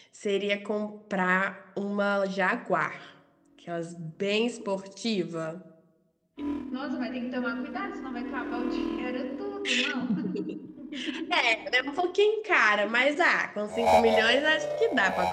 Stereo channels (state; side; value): identical; both; correlation 1.00